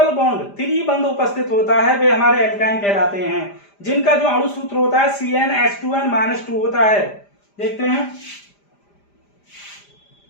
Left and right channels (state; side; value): late; right; 5.0 ms